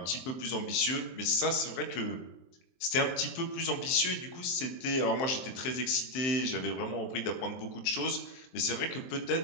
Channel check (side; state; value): right; late; 23 ms